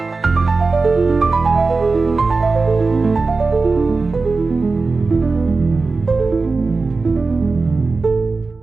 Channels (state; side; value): quieter; left; 3.9 dB